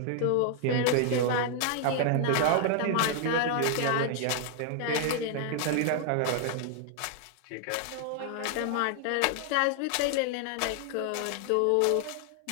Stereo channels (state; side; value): different; both; correlation 0.00